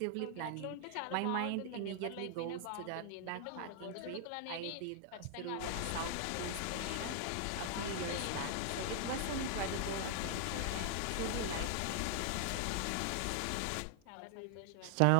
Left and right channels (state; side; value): different; both; correlation 0.00